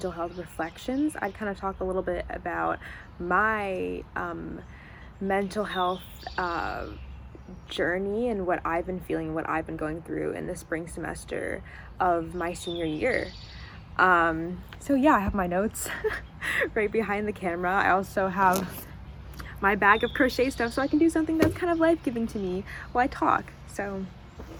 health reflections, I'd kind of talk a little bit about my mental health journey and what I've been feeling, what I've been going through in the spring semester of my senior year. So yeah, I have my notes right behind the camera. I also have my bag of crochet stuff so I can do something that's kind of life-giving to me while I talk. So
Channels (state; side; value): identical; both; correlation 1.00